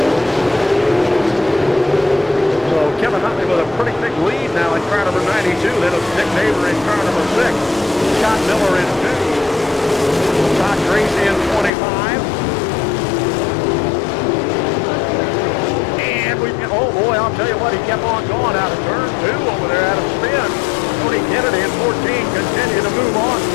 So Kevin Huntley with a pretty big lead now in car number 92. Then it's Nick Neighbor in car number 6. Scott Miller in 2. Todd Gracie in 25. And we've got, oh boy, I'll tell you what, he kept on going out of turn 2 over there out of spin. Tony Kennedy in 14 continue to move on,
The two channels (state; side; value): drops out; right; at 11.7 s